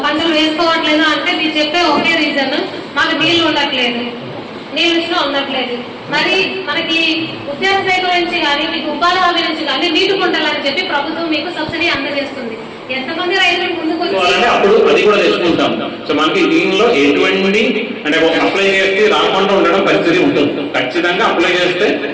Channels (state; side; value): identical; both; correlation 1.00